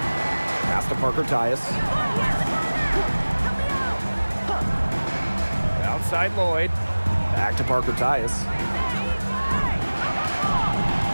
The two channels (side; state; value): both; inverted; correlation -1.00